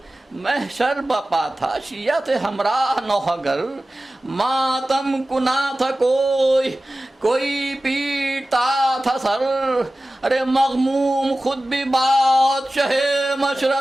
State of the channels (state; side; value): normal; both; correlation 0.96